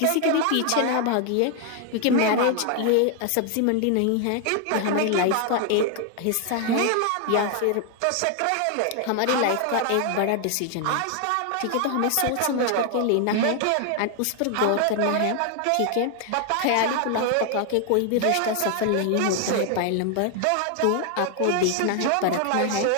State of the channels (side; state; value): both; different; correlation 0.00